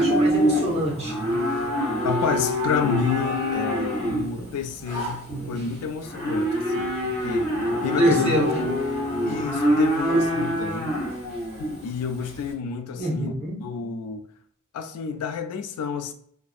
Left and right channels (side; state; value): both; normal; correlation 0.48